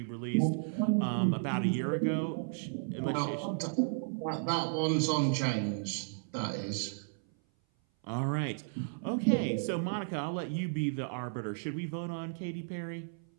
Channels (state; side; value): silent; left; 55 dB below the other